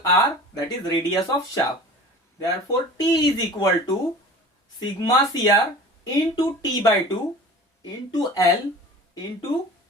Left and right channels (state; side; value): normal; both; correlation 0.40